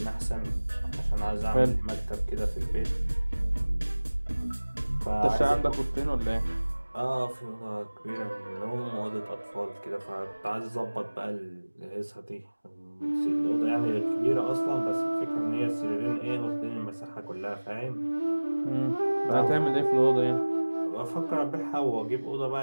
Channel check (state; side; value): inverted; both; correlation -1.00